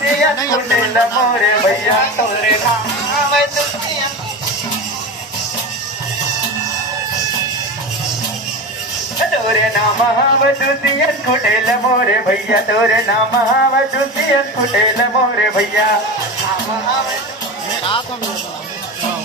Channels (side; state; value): both; normal; correlation 0.25